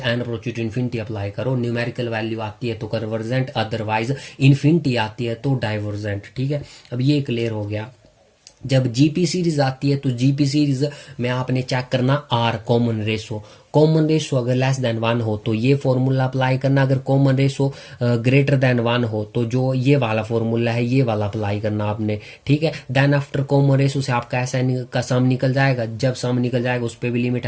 approach to infinity apply करो। न्यूमेरिकल वैल्यू आती है तो कन्वर्जेंट, अदरवाइज इन्फिनिटी आती है तो डाइवर्जेंट, ठीक है। अब ये क्लियर हो गया। जब जीपी सीरीज आती है तो जीपी सीरीज में आपने चेक करना R common ratio, common ratio अगर लेस देन 1 हो तो ये फॉर्मूला अप्लाई करना, अगर कॉमन रेशो ग्रेटर देन 1 हो तो जो ये वाला फॉर्मूला है ये वाला अप्लाई करना आपने, ठीक है। देन आफ्टर कॉमन रेशो से आपका ऐसा का सम निकल जाएगा, जब सम निकल जाएगा उस पर भी limit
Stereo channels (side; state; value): both; identical; correlation 1.00